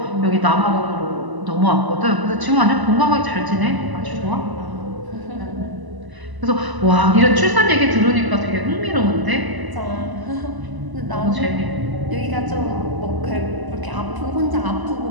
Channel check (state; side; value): late; left; 1.0 ms